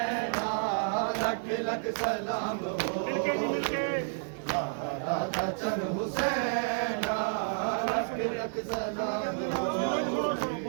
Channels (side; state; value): left; silent; digital silence